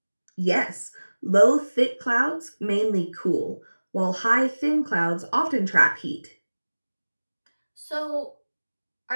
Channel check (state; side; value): inverted; both; correlation -1.00